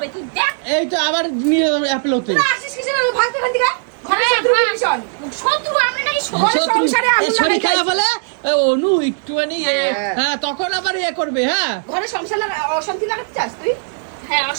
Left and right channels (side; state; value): left; silent; digital silence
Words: তুই দেখ। এই তো আবার নিয়ে অ্যাপেল হতে তোরা আসিস কিসের জন্য? ভাগতে ভাগতে গা ঘরে হ্যাঁ, শত্রু হ্যাঁ। ভীষণ। শত্রু আমরা নাকি ঘরে সংসারে আগুন শরীর লাগাই খারাপ যাইছি। হলে অনু একটুখানি হ্যাঁ তখন আবার করবে হ্যাঁ ঘরে সংসার অশান্তি লাগাতে চাস তুই? হ্যাঁ,